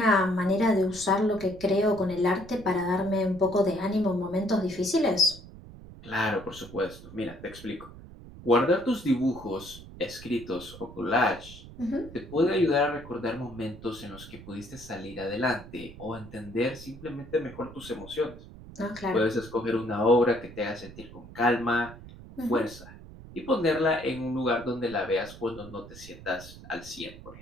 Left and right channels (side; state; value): right; noise; rumble, 16 dB below the sound